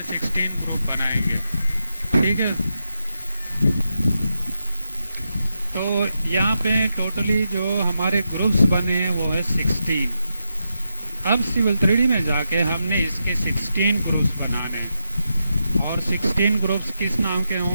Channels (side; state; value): both; inverted; correlation -0.86